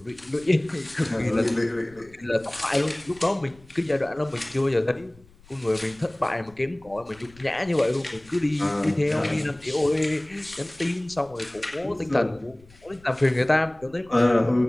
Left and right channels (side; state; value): left; noise; rumble, 26 dB below the sound